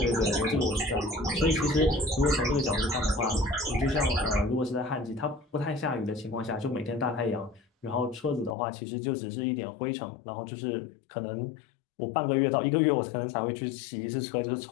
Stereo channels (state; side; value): drops out; right; at 8.6 s